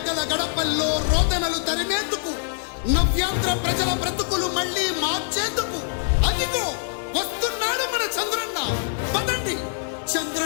గడపల్లో రోదనలు తరిమేందుకు, నవ్యాంధ్ర ప్రజల బ్రతుకులు మళ్ళీ మార్చేందుకు అదిగో వస్తున్నాడు మన చంద్రన్న. పదండి,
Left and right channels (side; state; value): right; silent; digital silence